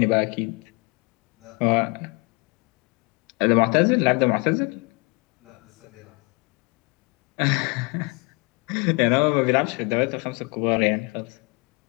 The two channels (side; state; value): right; quieter; 29.9 dB